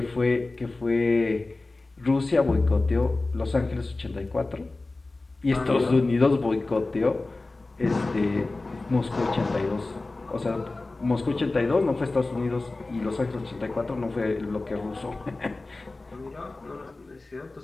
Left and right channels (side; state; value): right; quieter; 3.2 dB